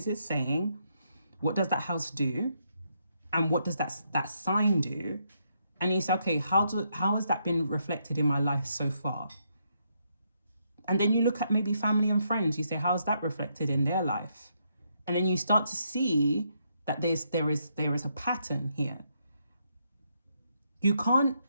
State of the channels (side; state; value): both; inverted; correlation -0.77